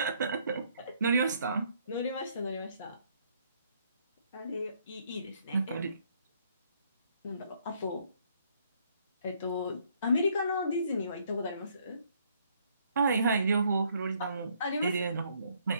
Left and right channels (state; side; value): inverted; both; correlation -0.67